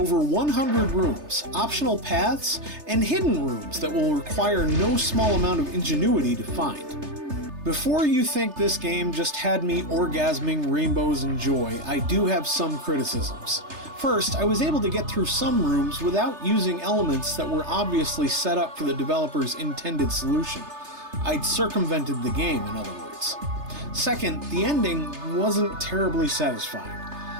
100 rooms, optional paths, and hidden rooms that will require no small amount of ingenuity to find. Before you think this game just had me orgasming rainbows and joy, I do have some criticisms. First, I was able to get through some rooms without using elements that were obviously set up for the developer's intended solution. I'd circumvented the game, in other words. Second, the ending wasn't terribly satisfying.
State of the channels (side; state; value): left; late; 3.3 ms